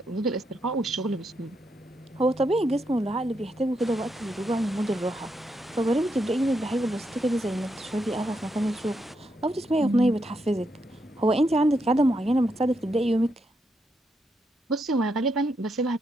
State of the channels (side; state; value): both; normal; correlation 0.81